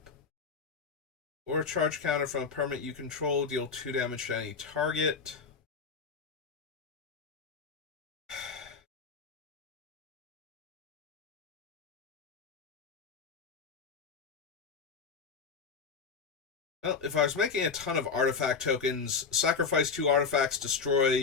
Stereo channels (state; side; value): quieter; right; 5.5 dB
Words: Or a charge counter from a permanent you control, deal 2 damage to any target. Well, if I was making a ton of artifact tokens, sacrifice 2 artifacts,